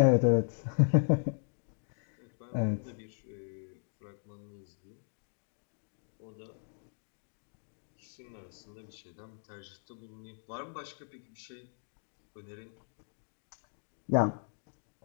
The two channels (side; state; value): right; silent; digital silence